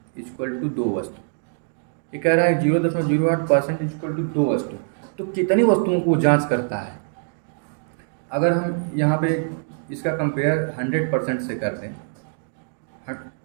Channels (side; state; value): left; silent; digital silence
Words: इक्वल टू 2 वस्तु। ये कह रहा है 0.08% इक्वल टू 2 वस्तु, तो कितनी वस्तुओं को जांच करता है। अगर हम यहाँ पे इसका कंपेयर 100% से कर दें,